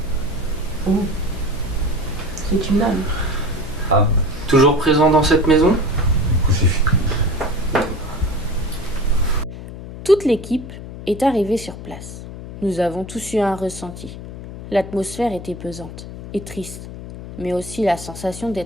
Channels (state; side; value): noise; left; hum, 11 dB below the sound